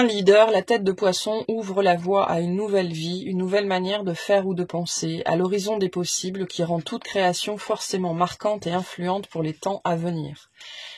leader, la tête de poisson ouvre la voie à une nouvelle vie, une nouvelle manière de faire ou de penser, à l'horizon des possibles qui rend toute création forcément marquante et influente pour les temps à venir.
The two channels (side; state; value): both; identical; correlation 1.00